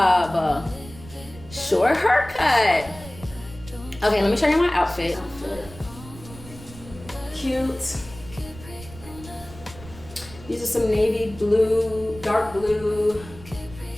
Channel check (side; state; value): right; noise; rumble, 17 dB below the sound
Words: Short haircut. Okay, let me show you my outfit. Cute. These are some navy blue, dark blue,